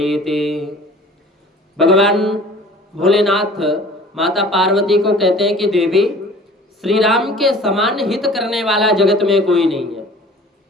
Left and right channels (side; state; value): both; normal; correlation 0.47